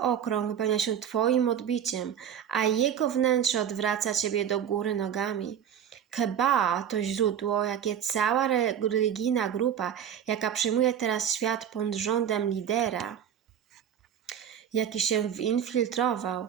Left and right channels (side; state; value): left; quieter; 9.1 dB